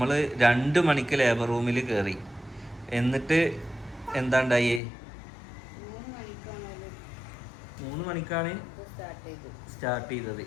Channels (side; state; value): right; drops out; at 4.8 s